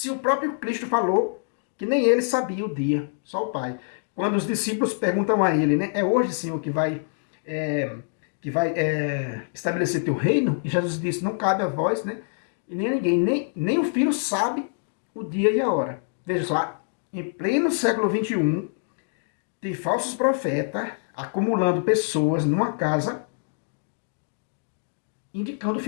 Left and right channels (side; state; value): right; silent; digital silence